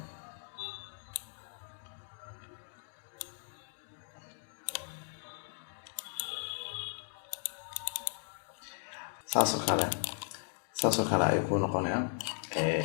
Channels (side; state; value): right; silent; 53 dB below the other